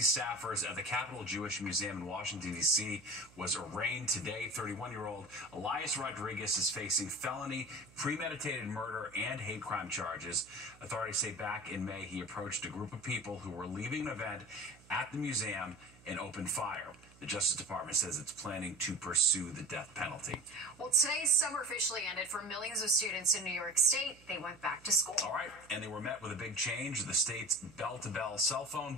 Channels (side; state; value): right; noise; hum, 24 dB below the sound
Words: staffers at the Capitol Jewish Museum in Washington, D.C. was arraigned today. 31-year-old Elias Rodriguez is facing felony, premeditated murder, and hate crime charges. Authorities say back in May he approached a group of people who were leaving an event at the museum and opened fire. The Justice Department says it's planning to pursue the death penalty. Well, today's summer officially ended for millions of students in New York State. They went back to school. All right, and they were met with a big change. The state's bell-to-bell cell phone